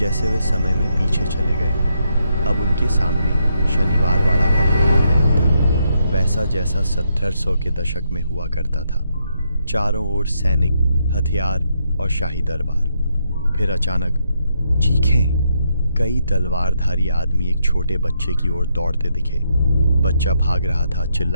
वे समय में पीछे चले गए। अब उनके सामने शनिवार वाड़ा का पुराना महल था, वैसा जैसा 1700 के दशक में हुआ करता था। चारों ओर सैनिक, हथियार और शाही दरबार। फिर अचानक चीखें। कई तलवारधारी आदमी एक छोटे बच्चे की ओर दौड़ते दिखे। बच्चा भाग रहा था,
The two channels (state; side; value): inverted; both; correlation -0.79